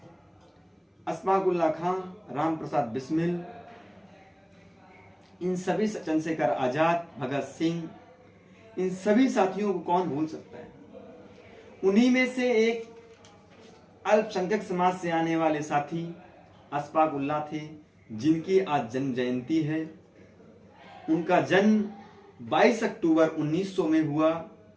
अशफाक उल्लाह खां, राम प्रसाद बिस्मिल, इन सभी चंद्रशेखर आजाद, भगत सिंह, इन सभी साथियों को कौन भूल सकता है। उन्हीं में से एक अल्पसंख्यक समाज से आने वाले साथी अशफाक उल्लाह थे, जिनकी आज जन्म जयंती है। उनका जन्म 22 अक्टूबर 1900 में हुआ,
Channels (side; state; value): both; identical; correlation 1.00